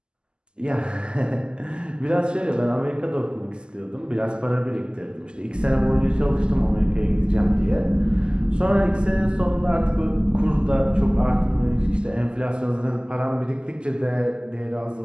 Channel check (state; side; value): late; left; 0.048 ms